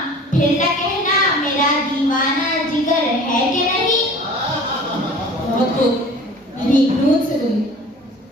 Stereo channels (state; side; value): normal; both; correlation 0.44